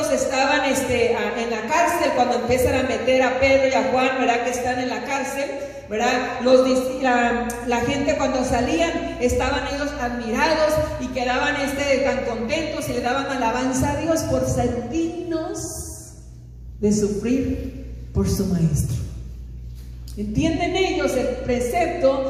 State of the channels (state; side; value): identical; both; correlation 1.00